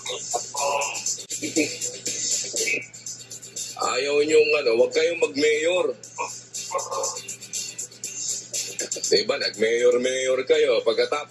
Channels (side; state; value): both; identical; correlation 1.00